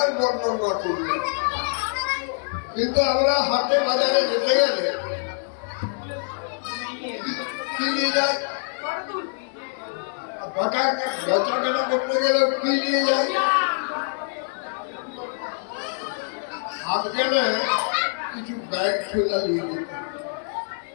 বর্ণনা করলেন। কিন্তু আমরা হাটে বাজারে যেতে গেলে কি নিয়ে যাই, বেচাকেনা করতে গেলে কি নিয়ে যাই, হাত গেলে কিছু ব্যাগ ঠেলা নিয়ে যেতে,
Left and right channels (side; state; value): right; silent; 59 dB below the other